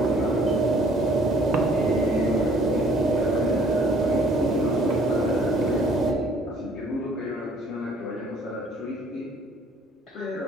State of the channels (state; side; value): normal; both; correlation 0.59